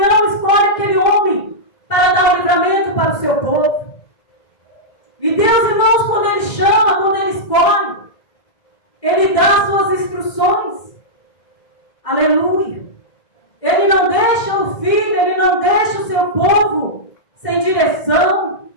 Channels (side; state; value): right; late; 2.0 ms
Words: escolhe aquele homem para dar o livramento para o seu povo. E Deus, irmãos, quando Ele chama, quando Ele escolhe, Ele dá as suas instruções. Aleluia. Ele não deixa o filho, Ele não deixa o seu povo sem direção,